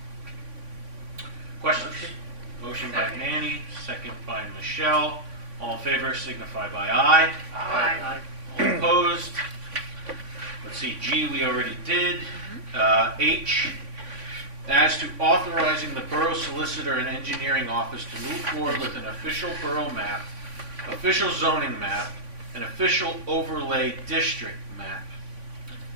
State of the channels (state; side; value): late; left; 3.5 ms